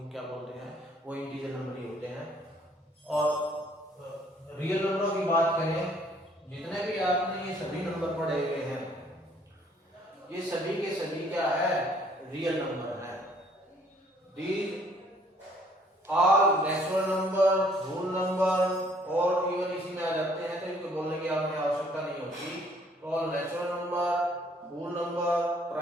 क्या बोलते हैं, वो इंटीजर नंबर ही होते हैं। और रियल नंबरों की बात करें, जितने भी आपने ये सभी नंबर पढ़े हुए हैं, ये सभी के सभी क्या है, रियल नंबर है। These all natural number, whole number और इवन इसी में आ जाते हैं, तो इनको बोलने की आपने आवश्यकता नहीं होती। All natural number, whole number,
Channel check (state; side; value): normal; both; correlation 0.61